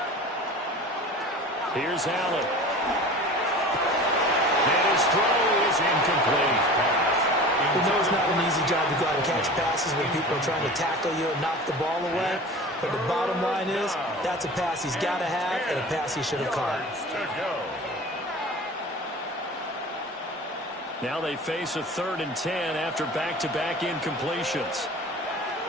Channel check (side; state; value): both; normal; correlation 0.38